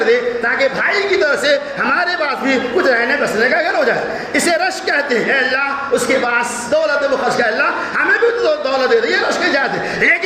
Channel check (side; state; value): both; identical; correlation 1.00